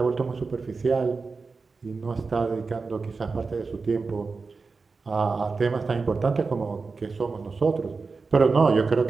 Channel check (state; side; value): quieter; left; 4.4 dB